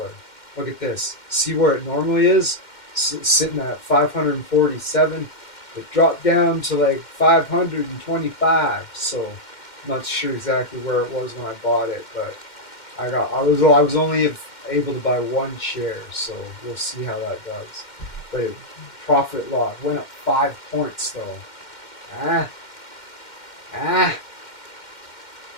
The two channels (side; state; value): right; late; 2.1 ms